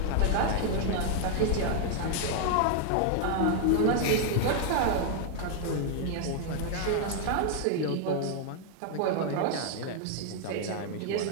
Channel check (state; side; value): different; both; correlation 0.00